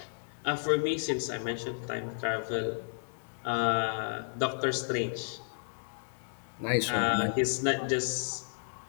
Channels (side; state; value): right; silent; 56 dB below the other